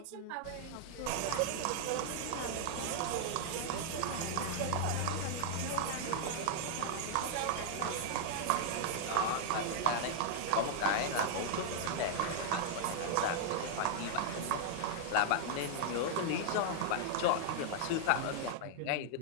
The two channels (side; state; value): both; different; correlation 0.00